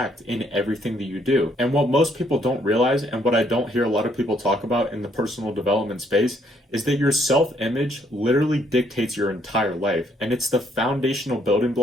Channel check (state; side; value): normal; both; correlation 0.69